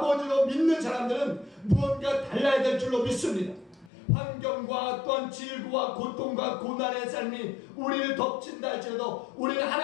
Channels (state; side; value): drops out; right; at 3.9 s